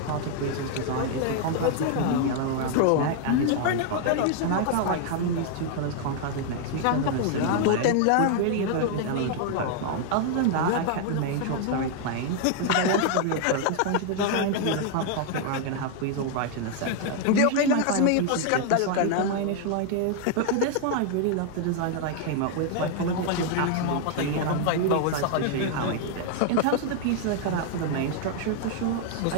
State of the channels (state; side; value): different; both; correlation 0.00